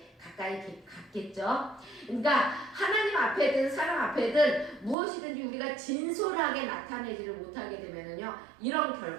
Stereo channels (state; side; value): drops out; left; at 5.0 s